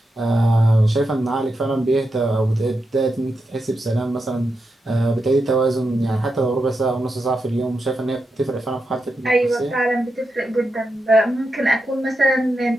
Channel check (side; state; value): both; normal; correlation 0.87